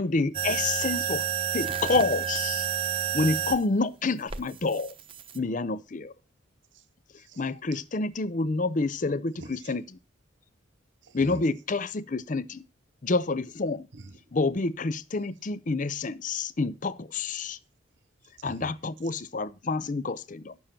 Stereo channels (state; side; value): normal; both; correlation 0.26